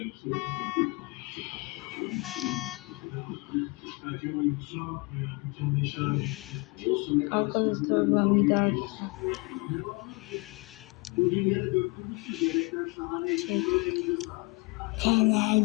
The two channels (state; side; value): quieter; right; 26.9 dB